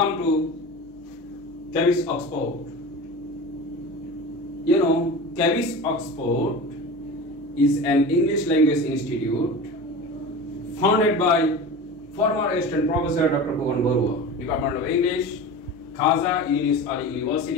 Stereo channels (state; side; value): normal; both; correlation 0.32